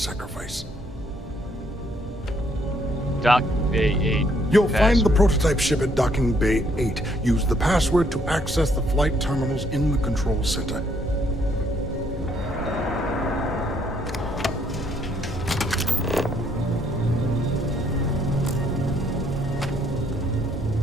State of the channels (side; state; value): both; normal; correlation 0.69